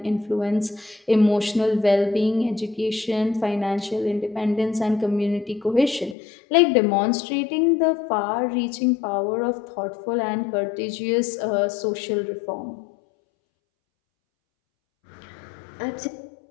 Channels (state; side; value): drops out; right; at 6.2 s